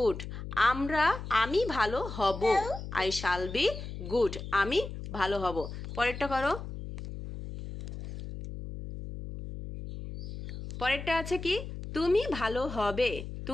আমি ভালো হব, আই শ্যাল বি গুড, আমি ভালো হব। পরেরটা করো। পরেরটা আছে কি, তুমি ভালো হবে,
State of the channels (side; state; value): left; noise; hum, 9 dB below the sound